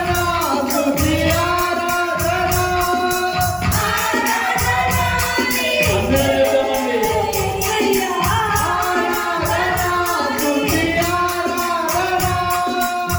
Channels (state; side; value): identical; both; correlation 1.00